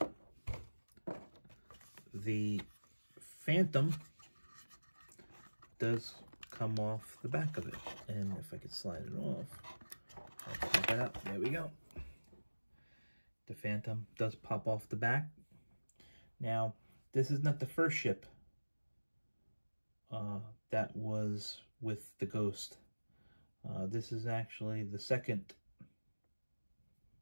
the Phantom does come off the back of it. And if I could slide it off, I'll pop it out. There we go. The Phantom does pop off the back. Now, this is not the first ship that was with the Ghost. This is actually the second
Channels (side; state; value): both; inverted; correlation -1.00